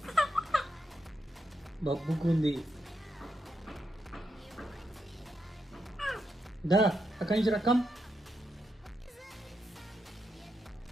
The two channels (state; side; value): normal; both; correlation 0.83